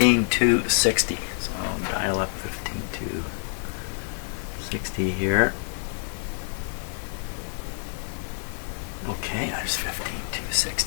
So I'll dial up 15260 here. Okay, there's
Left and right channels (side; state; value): right; silent; digital silence